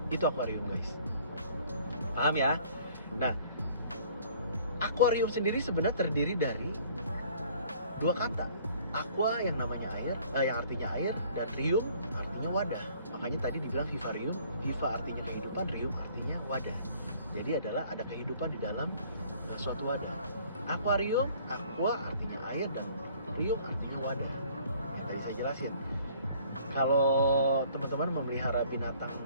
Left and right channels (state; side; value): inverted; both; correlation -0.56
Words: itu akuarium guys. Paham ya? Nah, akuarium sendiri sebenarnya terdiri dari dua kata. Aqua yang namanya air, yang artinya air, dan rium artinya wadah. Makanya tadi dibilang vivarium, viva artinya kehidupan, rium artinya wadah. Jadi adalah ada kehidupan di dalam suatu wadah. Akuarium, aqua artinya air, dan rium artinya wadah. Yang tadi saya jelasin. Kalau teman-teman memelihara binatang